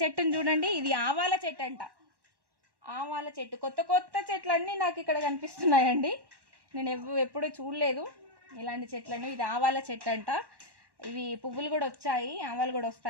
చెట్టును చూడండి, ఇది ఆవాల చెట్టు అంట. ఆవాల చెట్టు, కొత్త చెట్లన్నీ నాకు ఇక్కడ కనిపిస్తున్నాయండి. నేను ఎప్పుడూ చూడలేదు ఇలాంటి చెట్లను. ఇది ఆవాల చెట్టు అంట. ఇవి పువ్వులు కూడా వచ్చాయి, ఆవాలు కూడా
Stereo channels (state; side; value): late; left; 1.1 ms